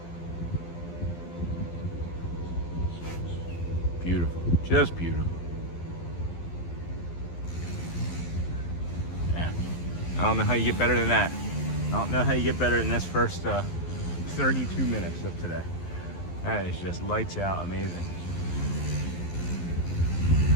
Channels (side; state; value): right; late; 12 ms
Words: Beautiful, just beautiful. Yeah, I don't know how you get better than that. I don't know how you get better than this first 32 minutes of today. That is just lights out amazing.